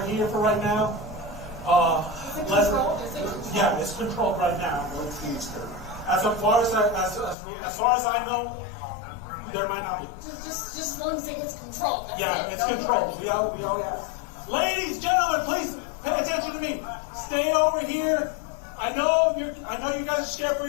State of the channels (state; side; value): drops out; right; at 7.4 s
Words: here for right now. Yeah, it's controlled right now. As far as I know, there might not be. Just as long as it gets controlled. Yeah, it's controlled. We all have. Ladies, gentlemen, please pay attention to me. Stay over here. I know you guys are scared for